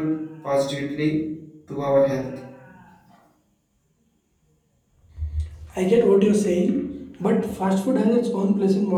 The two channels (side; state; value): both; identical; correlation 1.00